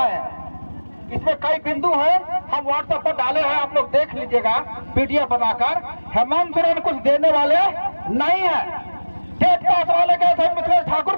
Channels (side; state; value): both; inverted; correlation -1.00